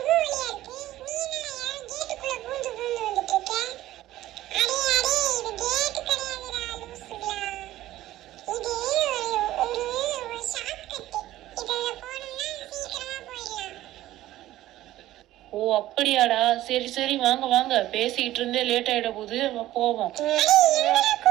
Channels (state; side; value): quieter; left; 14.9 dB